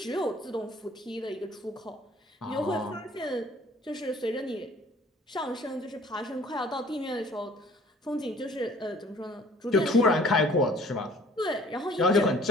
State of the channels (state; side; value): normal; both; correlation 0.53